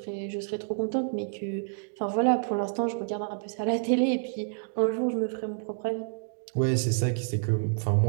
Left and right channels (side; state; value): left; silent; digital silence